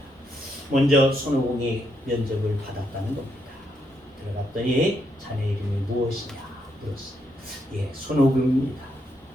먼저 손오공이 면접을 받았다는 겁니다. 들어갔더니 자네 이름이 무엇이냐 물었어요. 예, 손오공입니다.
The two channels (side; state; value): both; normal; correlation 0.78